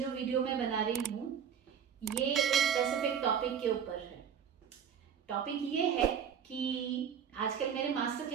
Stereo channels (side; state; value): left; quieter; 7.9 dB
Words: वीडियो मैं बना रही हूँ ये एक स्पेसिफिक टॉपिक के ऊपर है। टॉपिक ये है कि आजकल मेरे मास्टर